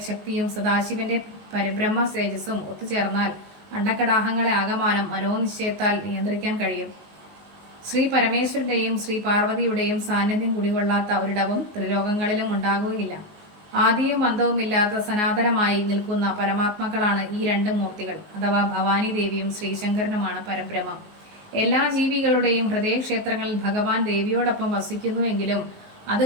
ശക്തിയും സദാശിവന്റെ പരബ്രഹ്മ തേജസ്സും ഒത്തുചേർന്നാൽ അണ്ടകടാഹങ്ങളെ ആകമാനം മനോനിശ്ചയത്താൽ നിയന്ത്രിക്കാൻ കഴിയും. ശ്രീ പരമേശ്വരന്റെയും ശ്രീ പാർവതിയുടെയും സാന്നിധ്യം കുടികൊള്ളാത്ത ഒരിടവും ത്രിലോകങ്ങളിലും ഉണ്ടാകുകയില്ല. ആദിയും അന്തവുമില്ലാത്ത സനാതനമായി നിൽക്കുന്ന പരമാത്മാക്കളാണ് ഈ രണ്ട് മൂർത്തികൾ, അഥവാ ഭവാനി ദേവിയും ശ്രീശങ്കരനുമാണ് പരബ്രഹ്മം. എല്ലാ ജീവികളുടെയും ഹൃദയക്ഷേത്രങ്ങളിൽ ഭഗവാൻ ദേവിയോടൊപ്പം വസിക്കുന്നുവെങ്കിലും അത്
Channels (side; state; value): left; late; 19 ms